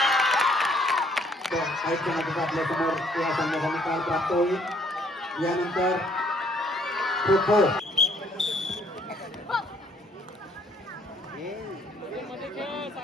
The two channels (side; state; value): both; normal; correlation 0.64